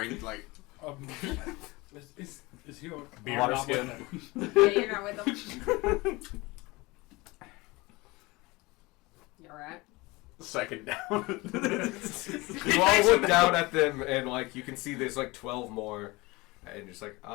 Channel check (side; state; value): right; quieter; 22.9 dB